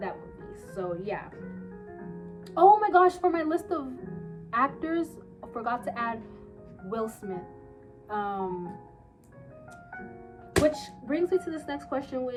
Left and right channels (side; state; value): both; identical; correlation 1.00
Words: that movie. So yeah. Oh my gosh, for my list of actors, I forgot to add Will Smith. Which brings me to this next question,